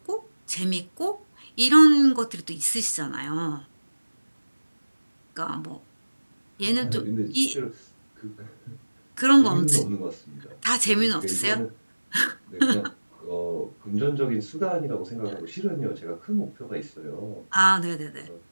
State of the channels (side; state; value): both; inverted; correlation -1.00